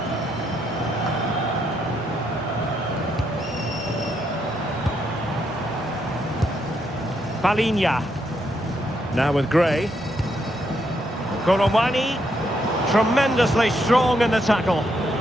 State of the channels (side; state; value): both; normal; correlation 0.77